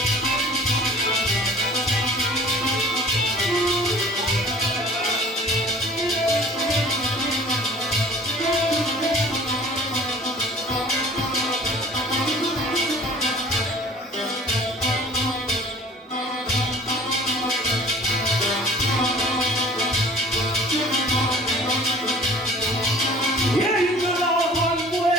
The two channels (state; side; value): normal; both; correlation 0.48